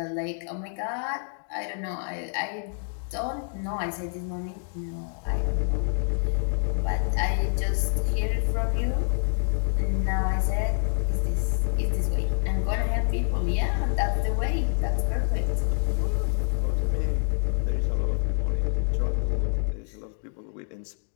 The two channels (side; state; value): right; silent; 57 dB below the other